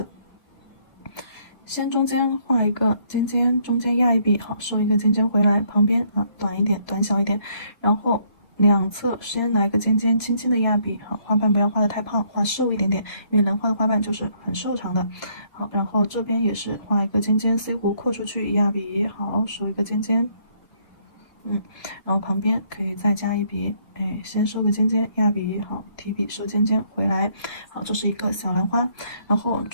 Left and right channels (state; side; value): late; right; 2.6 ms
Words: 先中间画一个尖尖，中间压一笔，好，收一个尖尖回来，旁边啊短一点，短小一点，然后两侧先来个尖尖，轻轻的压笔，好，花瓣不要画的太胖，画瘦一点点，因为兰花的花瓣就是很瘦长的，好，然后这边也是画一个尖尖，C 弧扩出去，压笔，好，收一个尖尖。然后旁边可以再加一笔，哎，先收个尖尖，压笔，好，提笔收尖尖回来，好，这是一个小兰花，然后